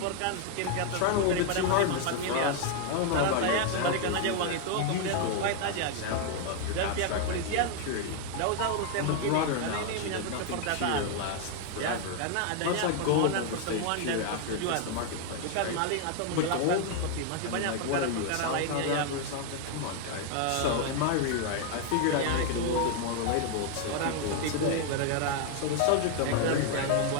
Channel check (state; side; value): different; both; correlation 0.00